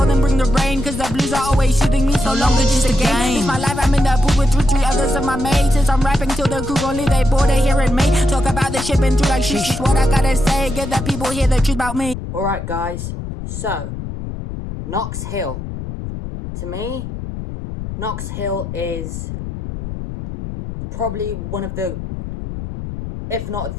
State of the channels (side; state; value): left; noise; rumble, 8 dB below the sound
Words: them bring the rain, cause the blues are always shooting me. So long it's just a game. It's my life, I'm in the booth with three others of my mates. Since I'm rapping till the crew gon' leave, they bored of hearing me talk about the shit been through like shit. Just what I gotta say, get the people hear the truth about me. Alright guys, so Knox Hill. To me, Knox Hill is probably one of the, if not